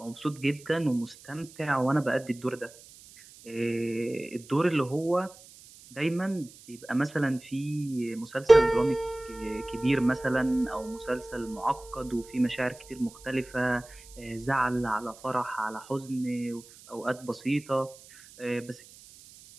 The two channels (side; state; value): right; noise; hiss, 21 dB below the sound